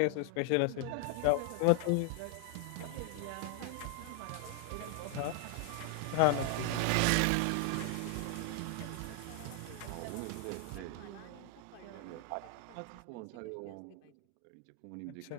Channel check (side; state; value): both; different; correlation 0.00